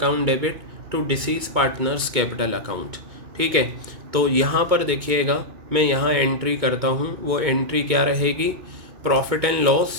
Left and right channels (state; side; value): late; left; 2.2 ms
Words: debit to deceased partners capital account. ठीक है। तो यहाँ पर देखिएगा, मैं यहाँ एंट्री करता हूँ, वो एंट्री क्या रहेगी, प्रॉफिट एंड